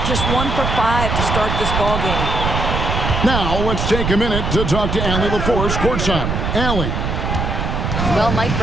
Just 1 for 5 to start this ball game. Now let's take a minute to talk to Allie LaForce courtside. Allie. Well, Mike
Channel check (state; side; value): noise; right; rumble, 1 dB below the sound